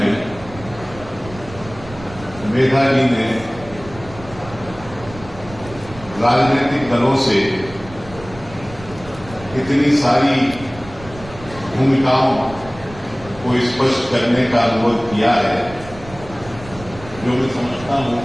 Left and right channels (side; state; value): right; noise; rumble, 16 dB below the sound